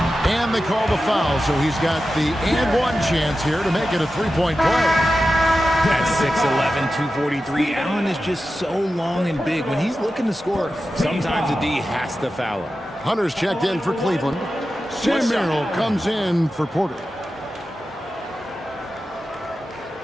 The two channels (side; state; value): both; normal; correlation 0.92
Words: And they call the foul, so he's got the and one chance here to make it a three-point play. That's 6'11", 243. Allen is just so long and big. When he's looking to score, sometimes the D has to foul him. Hunter's checked in for Cleveland. Sam Merrill comes in for Porter.